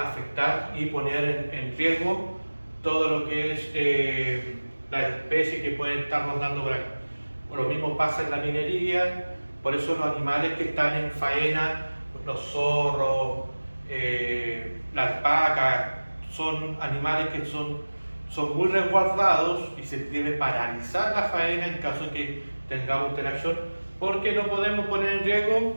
y poner en riesgo todo lo que es las especies que pueden estar rondando por acá. Lo mismo pasa en la minería, por eso los animales que están en faena, los zorros, la alpaca, son animales que son muy resguardados y se debe paralizar la faena en caso de que tengamos interacción, porque no podemos poner en riesgo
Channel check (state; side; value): inverted; both; correlation -1.00